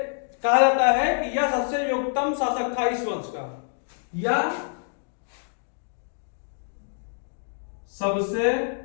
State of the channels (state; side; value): silent; right; 61 dB below the other